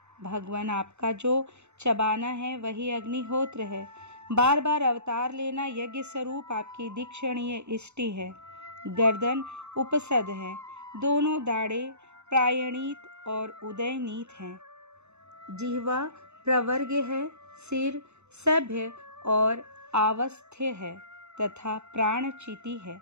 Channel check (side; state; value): left; late; 0.82 ms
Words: भगवान आपका जो चबाना है वही अग्निहोत्र है। बार बार अवतार लेना यज्ञ स्वरूप आपकी दीक्षणीय इष्टि है। गर्दन उपसद है, दोनों दाढ़ें प्रायणीत और उदयनीत हैं। जिह्वा प्रवर्ग है, सिर सभ्य और आवस्थ्य है तथा प्राण चिति है।